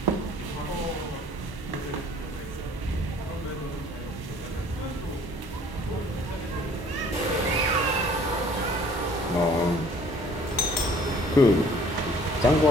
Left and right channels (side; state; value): both; normal; correlation 0.54